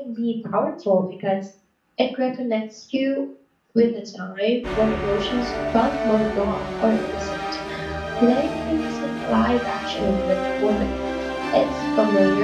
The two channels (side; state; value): both; identical; correlation 1.00